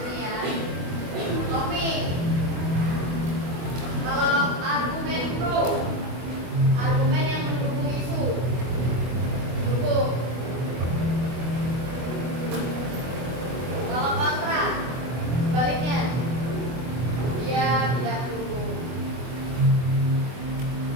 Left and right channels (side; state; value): left; late; 24 ms